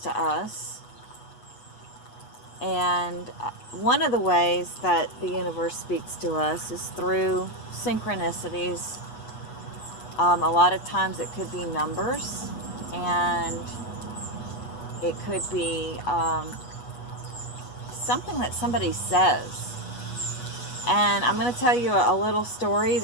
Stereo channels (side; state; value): right; late; 8.2 ms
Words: us, and one of the ways that the universe speaks to us is through synchronicities. A lot of times it could be numbers, and it could be something that somebody says. And I'm going to tell you a little story